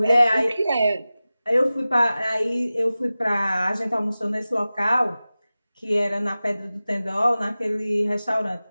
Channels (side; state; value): both; inverted; correlation -0.96